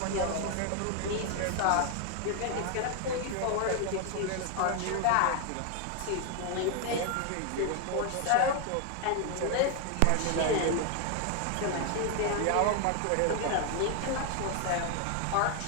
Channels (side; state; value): both; different; correlation 0.01